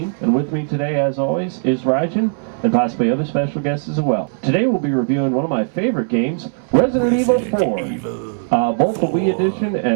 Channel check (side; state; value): left; silent; 67 dB below the other